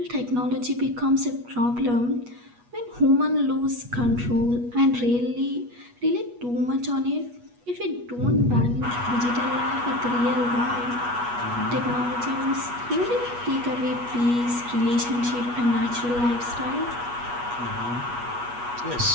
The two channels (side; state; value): left; late; 8.3 ms